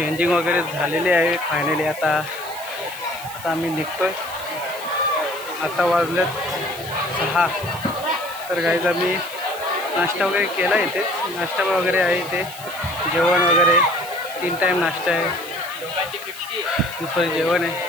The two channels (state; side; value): noise; right; hiss, 15 dB below the sound